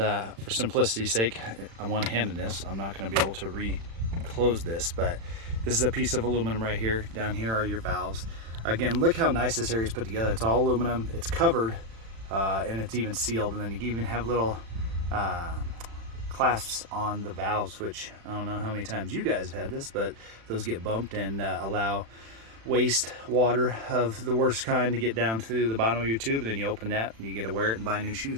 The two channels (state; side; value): late; left; 36 ms